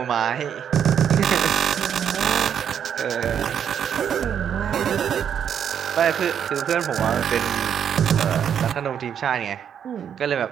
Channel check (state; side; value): quieter; left; 8.5 dB